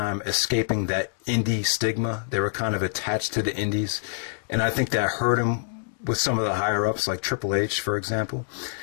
escaping that indie stigma. They were kind of attached to the indies, and I think that hurt him with some of the higher-ups, like Triple H, for example.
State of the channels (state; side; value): silent; right; digital silence